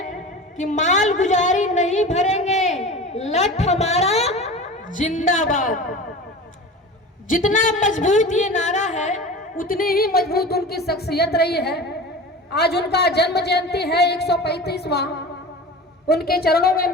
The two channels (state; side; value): normal; both; correlation 0.34